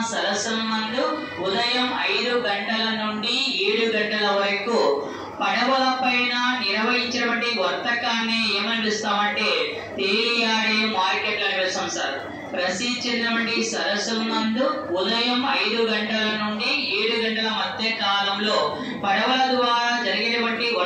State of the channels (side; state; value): both; identical; correlation 1.00